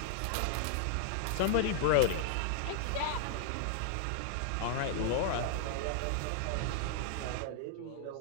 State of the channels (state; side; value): different; both; correlation -0.01